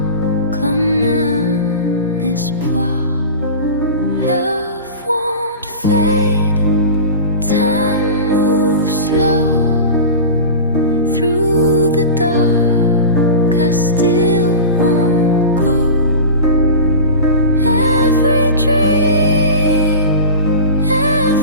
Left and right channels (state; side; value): inverted; both; correlation -0.31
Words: comme un espoir. Love won't fade, time moves slow through the dark. I still won't go. Every dream,